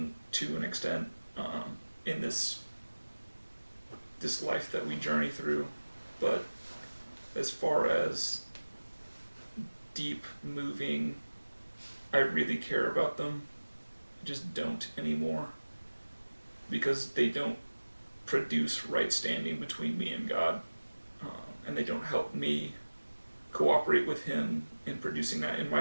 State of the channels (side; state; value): both; inverted; correlation -1.00